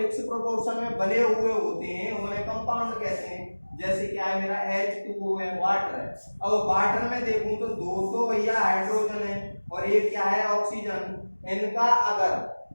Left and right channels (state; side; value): inverted; both; correlation -1.00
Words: प्रोपोर्शन में बने हुए होते हैं उन्हें कंपाउंड कहते हैं। जैसे क्या है मेरा H2O है, वाटर है। अब वाटर में देखूं तो दो तो भैया हाइड्रोजन है और एक क्या है ऑक्सीजन। इनका